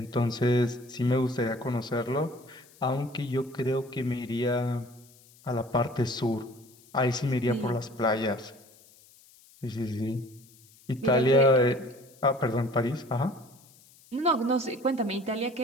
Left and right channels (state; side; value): noise; left; hiss, 27 dB below the sound